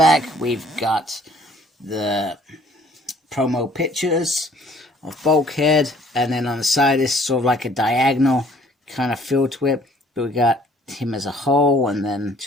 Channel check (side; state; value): both; normal; correlation 0.58